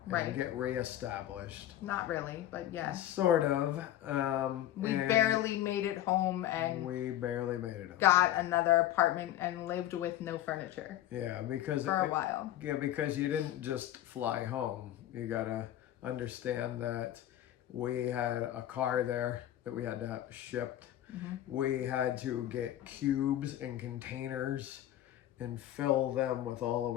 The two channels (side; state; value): right; quieter; 12.9 dB